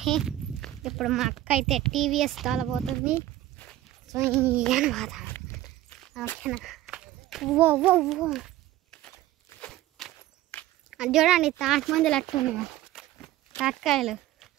ఇప్పుడు మా అక్క అయితే టీవీఎస్ తోలబోతుంది. సో అనమాట ఓకేనా. ఓ ఓ ఓ అది చూడండి, తాటి మందులు అట్టున్నాయి, తాటికాయలు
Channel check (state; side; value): quieter; left; 14.7 dB